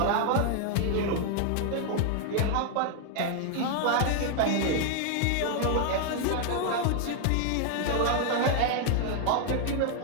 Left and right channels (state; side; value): different; both; correlation 0.00